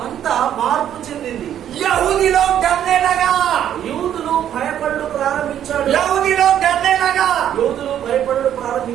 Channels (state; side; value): quieter; left; 10.3 dB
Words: అంతా మార్పు చెందింది. यहूदी लोग डरने लगा, యూదులు భయపడు ప్రారంభించాడు. यहूदी लोग डरने लगा। యూదులు భయపడు अरे